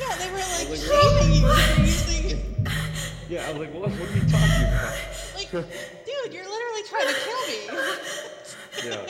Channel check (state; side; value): identical; both; correlation 1.00